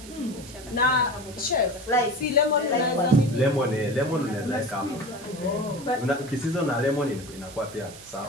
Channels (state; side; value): noise; right; hiss, 17 dB below the sound